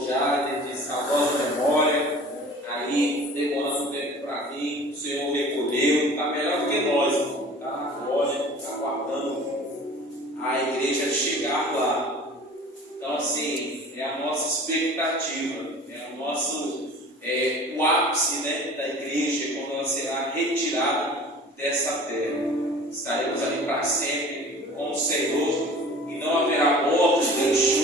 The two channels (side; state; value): both; normal; correlation 0.43